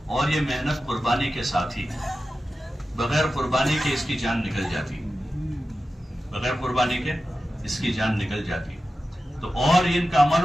اور یہ محنت قربانی کے ساتھ ہی، بغیر قربانی کے اس کی جان نکل جاتی، بغیر قربانی کے اس کی جان نکل جاتی۔ تو اور ان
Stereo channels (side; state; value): both; normal; correlation 0.94